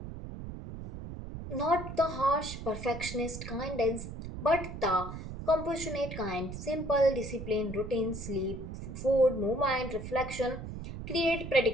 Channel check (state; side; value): noise; right; rumble, 9 dB below the sound